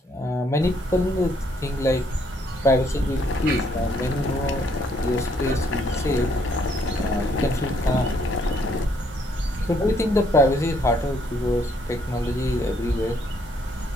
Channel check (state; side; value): normal; both; correlation 0.69